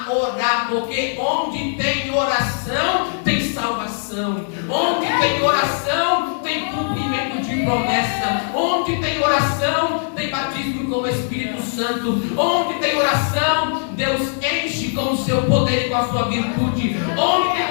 orar, porque onde tem oração tem salvação, onde tem oração tem cumprimento de promessa, onde tem oração tem batismo com o Espírito Santo, onde tem oração Deus enche com o seu poder e com a sua virtude, onde tem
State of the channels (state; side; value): silent; right; digital silence